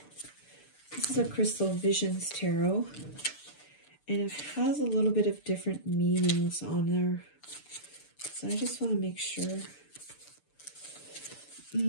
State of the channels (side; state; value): right; late; 6.8 ms